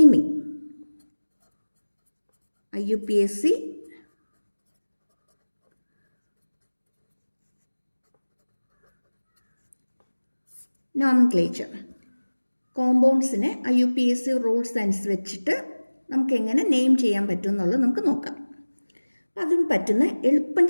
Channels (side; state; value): both; inverted; correlation -1.00